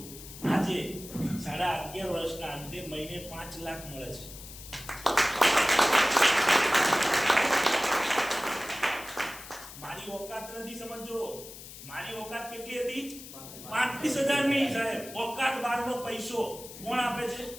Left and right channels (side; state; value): left; noise; hiss, 14 dB below the sound